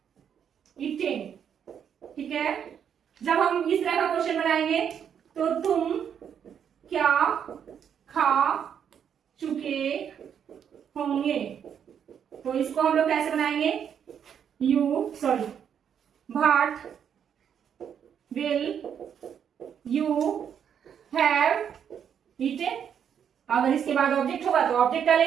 ईटेन, ठीक है। जब हम इस तरह का क्वेश्चन बनाएंगे तो तुम क्या खा चुके होंगे, तो इसको हम लोग कैसे बनाएंगे, what will you have eaten. अगर इसके बाद ऑब्जेक्ट होगा तो ऑब्जेक्ट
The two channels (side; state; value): left; quieter; 8.3 dB